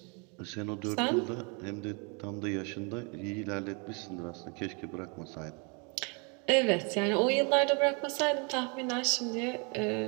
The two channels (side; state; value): left; quieter; 34.4 dB